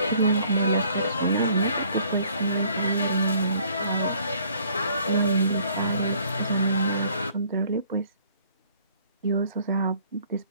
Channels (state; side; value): inverted; both; correlation -0.60